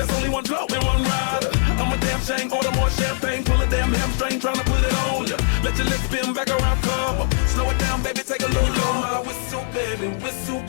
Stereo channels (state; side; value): silent; right; digital silence